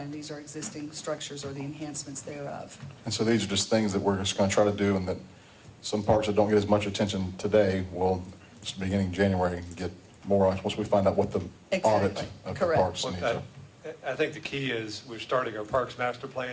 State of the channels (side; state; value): both; identical; correlation 1.00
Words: These are existing structures or the enhancements thereof. And so these are just things that we're just going to try to do, and that some parks that don't get as much attention today will, beginning January, get more on once we find out what the audit Exactly. of the Correct. parks needs are. I think the key is we're starting our Parks Master